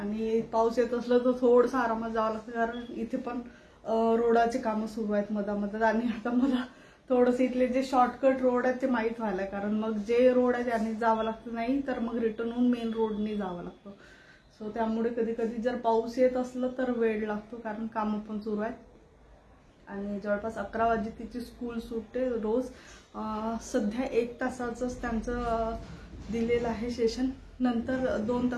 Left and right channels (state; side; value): identical; both; correlation 1.00